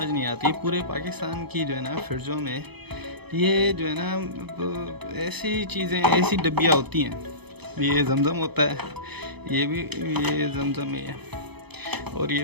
नहीं आती, पूरे पाकिस्तान की जो है ना फ्रिजों में ये जो है ना ऐसी चीज़ें, ऐसी डब्बियाँ होती हैं। ये जमजम होता है, ये जमजम ही है, और ये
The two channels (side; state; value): left; late; 0.98 ms